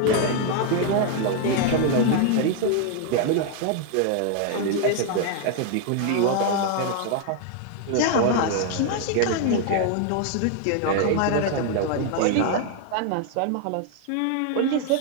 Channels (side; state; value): both; different; correlation 0.00